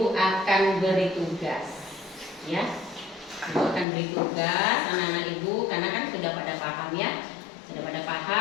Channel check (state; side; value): drops out; right; at 3.9 s